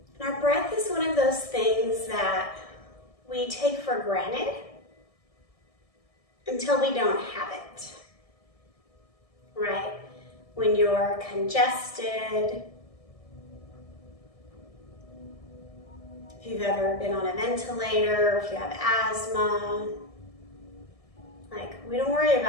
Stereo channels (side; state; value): right; late; 1.7 ms